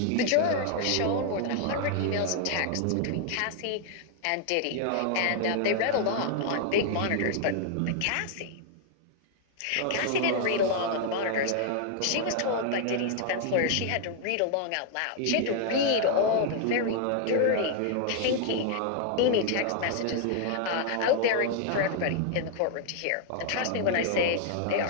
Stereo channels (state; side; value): different; both; correlation 0.00